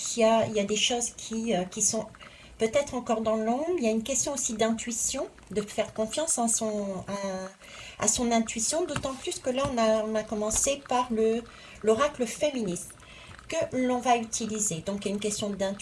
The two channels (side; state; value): both; identical; correlation 1.00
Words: il y a des choses qui sont peut-être encore dans l'ombre. Il y a une question aussi d'intuition, de faire confiance à son intuition, d'autant plus que là, on a commencé par l'oracle féministe que l'on va utiliser. Donc, il y a une question